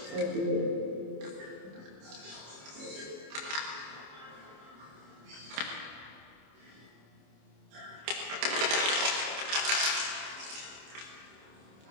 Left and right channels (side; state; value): left; late; 26 ms